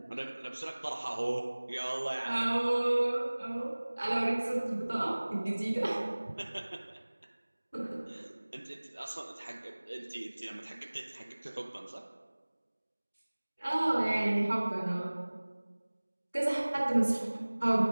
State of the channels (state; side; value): inverted; both; correlation -1.00